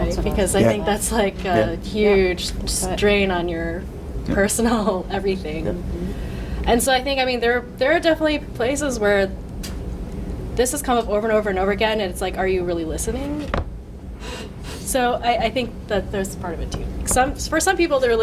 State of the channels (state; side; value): identical; both; correlation 1.00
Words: Because I think that's like a huge strain on your personal everything. And so I think, there are definitely places where this has come up over and over and over again, and it's like, are you really listening? So I think that there's part of it too. For some people, they're